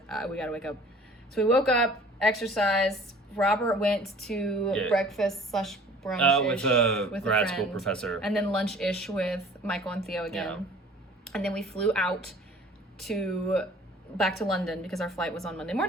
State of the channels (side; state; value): both; normal; correlation 0.49